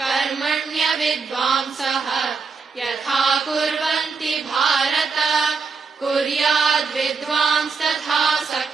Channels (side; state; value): left; quieter; 4.9 dB